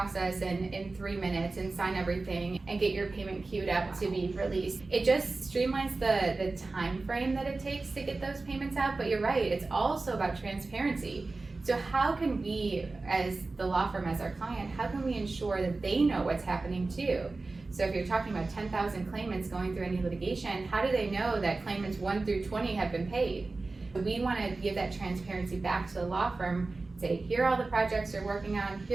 in 3 minutes and sign everything and get your payment queued up to be released. It just streamlines the time frame that it takes to get those payments out, but you're right, it's also about transparency. So how can we, as the law firm, as our client, how can we ensure that they know what's happening too? So if you're talking about 10,000 claimants going through any litigation, how do they know that claimants 1 through 20 have been paid? We want to give that transparency back to the law firm, say, here are all the projects they're working on,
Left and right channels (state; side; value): quieter; left; 3.5 dB